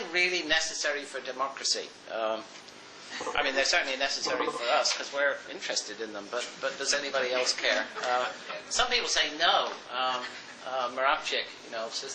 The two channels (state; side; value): identical; both; correlation 1.00